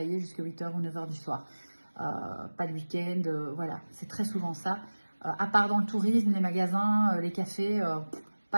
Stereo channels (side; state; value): both; inverted; correlation -1.00